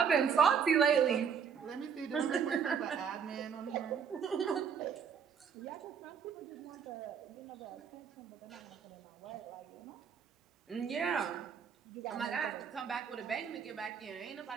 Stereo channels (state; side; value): quieter; left; 6.9 dB